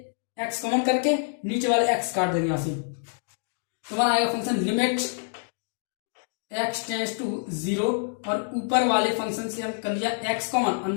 x कॉमन करके नीचे वाले x काट देंगे यहाँ से, तो हमारा आएगा function limit x tends to 0 और ऊपर वाले फंक्शन से हम कर लिया x कॉमन,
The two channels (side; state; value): right; silent; 58 dB below the other